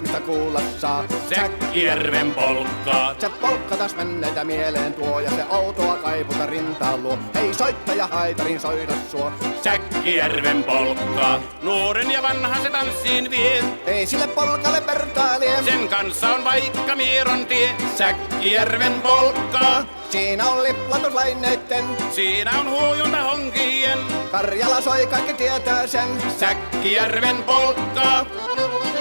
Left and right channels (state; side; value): inverted; both; correlation -1.00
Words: kuulla saa. Säkkijärven polkkaa. Se polkka taas menneitä mieleen tuo ja se outoa kaiputa rintaan luo. Ei soittaja haitarin soida suo. Säkkijärven polkkaa. Nuoren ja vanhan se tanssiin vie. Ei sille polkalle vertailie. Sen kanssa on vaikka Mieron tie. Säkkijärven polkkaa. Siinä on liplatuslaineitten. Siinä on huojunta honkien. Karjala soi, kaikki tietää sen. Säkkijärven polkkaa.